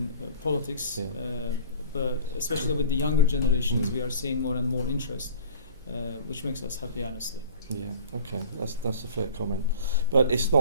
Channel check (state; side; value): inverted; both; correlation -0.41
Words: politics, but especially with the younger generations, we are seeing more and more interest, which makes us happy, honestly. Yeah, okay, that's a fair comment. But it's